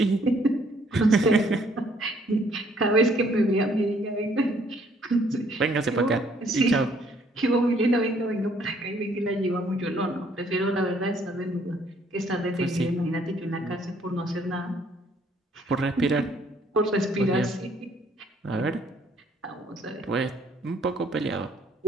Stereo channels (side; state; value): both; normal; correlation 0.64